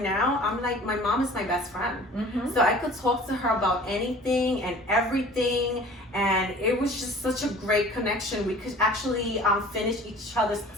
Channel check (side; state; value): both; normal; correlation 0.46